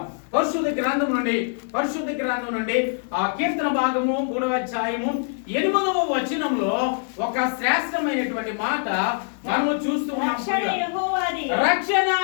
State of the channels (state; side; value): silent; right; 63 dB below the other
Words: పరిశుద్ధ గ్రంథం నుండి ఆ కీర్తన భాగము 3వ అధ్యాయము 8వ వచనంలో ఒక శ్రేష్టమైనటువంటి మాట మనము చూస్తూ ఉన్నాం. రక్షణ